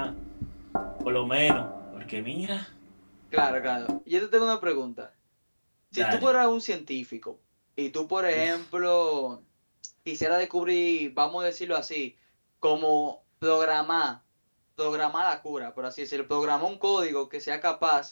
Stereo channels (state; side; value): inverted; both; correlation -1.00